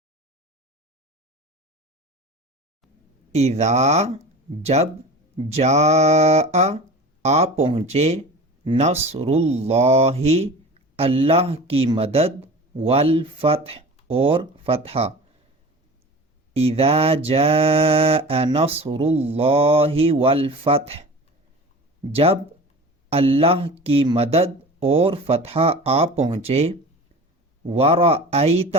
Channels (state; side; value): normal; both; correlation 0.36